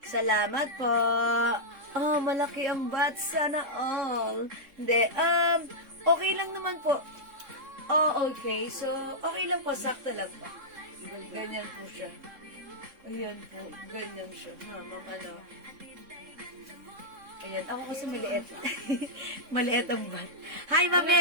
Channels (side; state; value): left; late; 3.6 ms